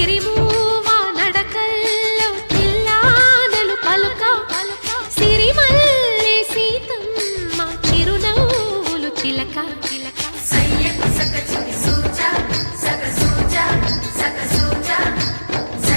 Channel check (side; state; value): both; inverted; correlation -1.00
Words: నడకల్లో తిల్లానలు పలుక సిరిమల్లె సీతమ్మ చిరునవ్వులు చిలక సయ్యకు సకచికి సూజా సక సూజా సక సూజా